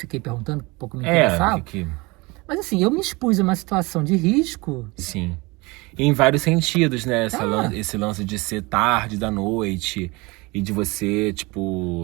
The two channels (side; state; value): left; quieter; 24.6 dB